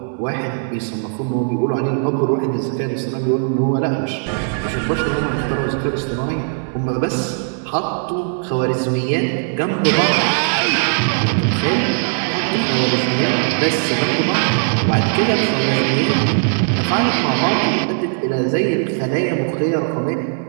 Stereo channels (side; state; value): left; silent; 64 dB below the other